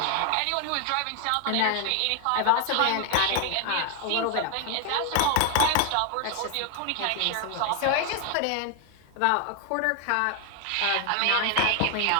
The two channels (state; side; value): different; both; correlation 0.00